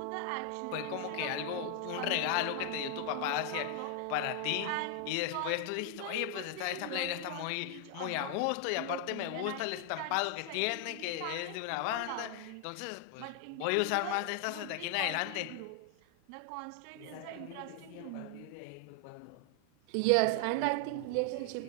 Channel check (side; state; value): both; different; correlation 0.00